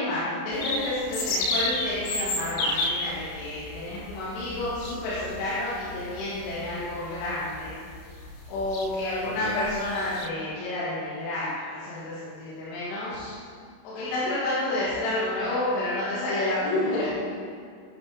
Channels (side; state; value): right; late; 31 ms